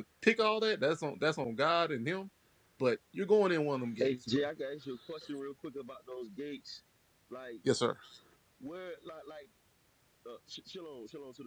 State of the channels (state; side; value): identical; both; correlation 1.00